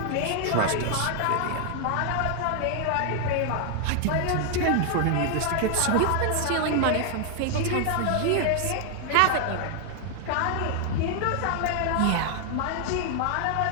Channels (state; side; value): different; both; correlation 0.00